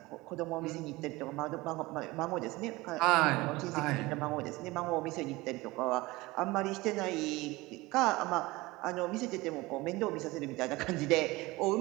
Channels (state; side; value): quieter; left; 21.1 dB